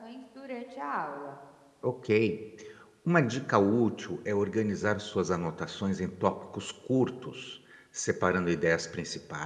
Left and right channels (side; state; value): both; identical; correlation 1.00